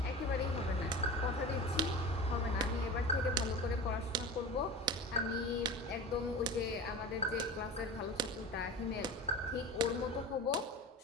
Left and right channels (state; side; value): normal; both; correlation 0.33